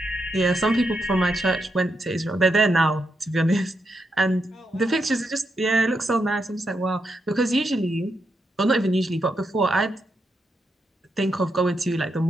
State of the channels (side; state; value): both; normal; correlation 0.82